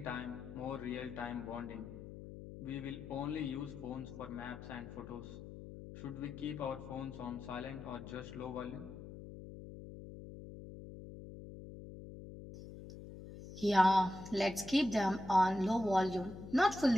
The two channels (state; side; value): noise; left; hum, 12 dB below the sound